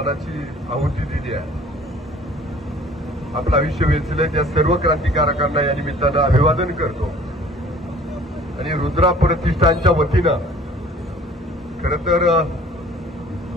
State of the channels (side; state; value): both; normal; correlation 0.51